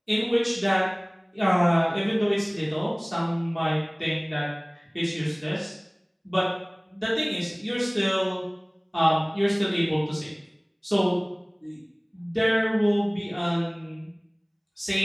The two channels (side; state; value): both; identical; correlation 1.00